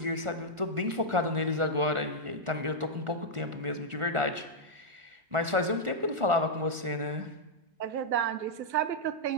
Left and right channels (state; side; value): late; left; 1.4 ms